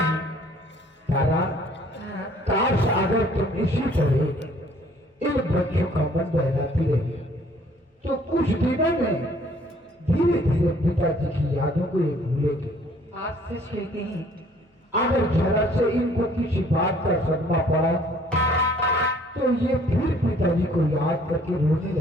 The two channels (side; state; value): both; normal; correlation 0.58